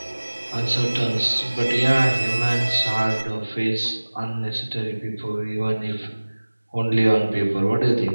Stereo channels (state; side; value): inverted; both; correlation -1.00